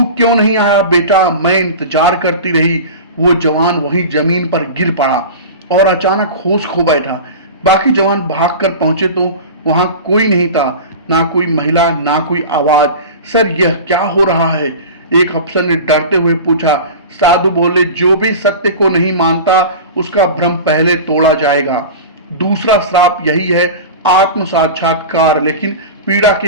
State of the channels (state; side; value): inverted; both; correlation -0.31